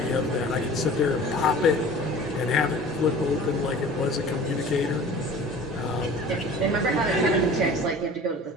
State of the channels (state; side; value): normal; both; correlation 0.42